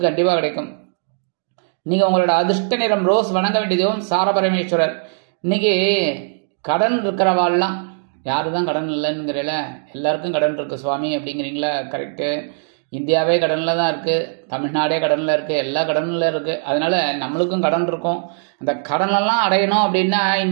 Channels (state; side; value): silent; left; digital silence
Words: கண்டிப்பா கிடைக்கும். நீங்க உங்களோட அதிர்ஷ்ட நிறம் ரோஸ். வணங்க வேண்டியதும் சார பரமேஸ்வரர். இன்னைக்கு கடன் இருக்கிறவாள்லாம், யாரு தான் கடன் இல்லைங்கிறல, எல்லாருக்கும் கடன் இருக்கு சுவாமி அப்படிங்கிறீங்களா? கரெக்டு. இந்தியாவே கடன்ல தான் இருக்கு, தமிழ்நாடே கடன்ல இருக்கு, எல்லா கடன்ல இருக்கு. அதனால நம்மளுக்கும் கடன் இருக்கும். அந்த கடனெல்லாம் அடையணும் அப்படின்னா